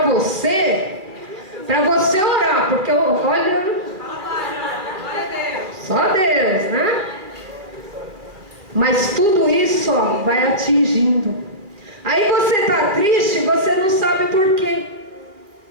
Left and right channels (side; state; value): left; late; 2.4 ms